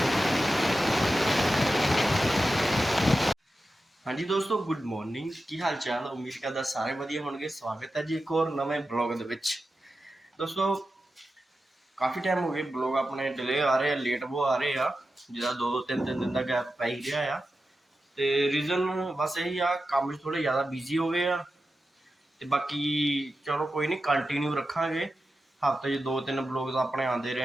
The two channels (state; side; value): normal; both; correlation 0.91